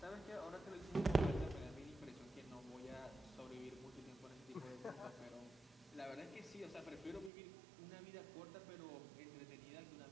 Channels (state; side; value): drops out; left; at 7.3 s